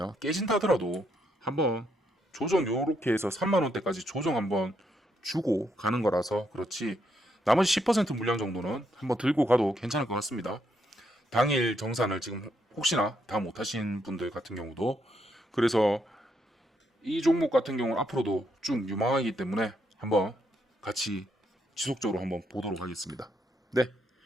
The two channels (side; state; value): both; normal; correlation 0.76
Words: 깨진다 하더라도 한번 조정 요렇게 해서 3만원대까지 조정 한번 주고 가는 거라서 그렇지, 나머지 10% 물량 정도는 한번 들고 가도 괜찮을 것 같습니다. 당일 정산을 지금 혹시나 다 못하신 분들 같은 경우도, 그래서 이 종목 같은 경우는 앞으로도 쭉 유망하기 때문에 한번 같이 지속적으로 한번 보도록 하겠습니다. 네,